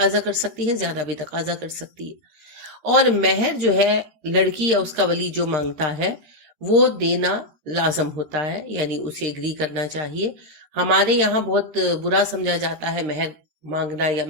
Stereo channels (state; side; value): late; left; 13 ms